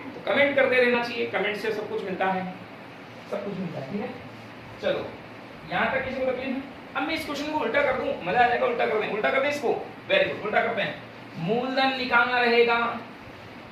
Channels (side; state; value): both; identical; correlation 1.00